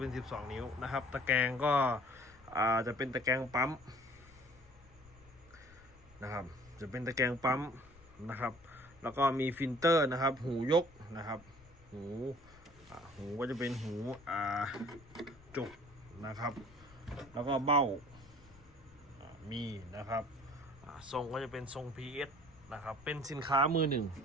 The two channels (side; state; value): left; noise; rumble, 24 dB below the sound